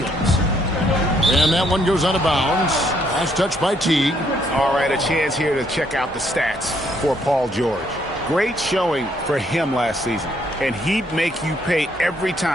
And that one goes out of bounds. Last touch by Teague. All right, a chance here to check out the stats for Paul George. Great showing for him last season. and he'd make you pay every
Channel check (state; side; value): normal; both; correlation 0.69